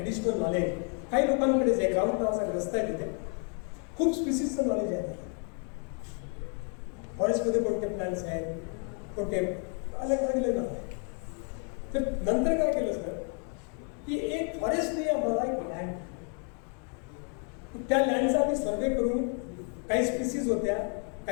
नॉलेज, काही लोकांकडेच आहे. ग्राउंड नावाचा ग्रस्त आहे तिथे, खूप स्पीसीजचं नॉलेज आहे. फॉरेस्टमध्ये कोणते प्लांट्स आहेत, कोणते अलग अलग नाव आहे. तर नंतर काय केलं सर की एक फॉरेस्टने आम्हाला एक लँड, त्या लँडचा आम्ही सर्वे करून, काही स्पीसीज होत्या,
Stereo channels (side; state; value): right; quieter; 40.0 dB